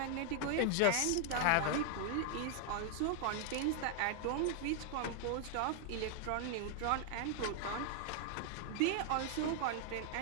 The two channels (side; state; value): both; different; correlation 0.00